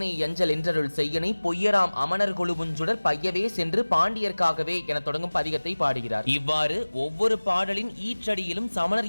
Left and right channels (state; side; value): inverted; both; correlation -1.00